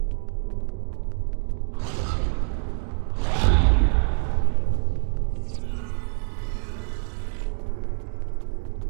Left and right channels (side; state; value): left; silent; digital silence